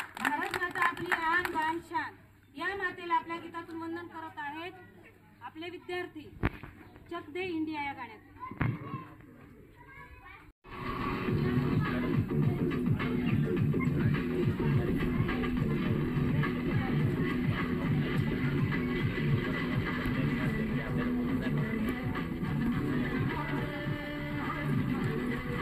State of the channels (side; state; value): both; identical; correlation 1.00